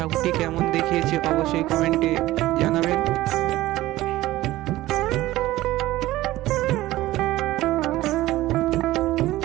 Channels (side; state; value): left; quieter; 16.6 dB